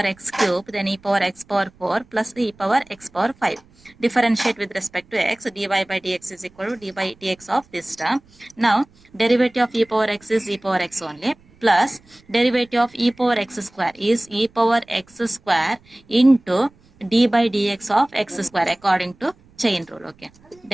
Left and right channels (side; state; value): right; noise; rumble, 29 dB below the sound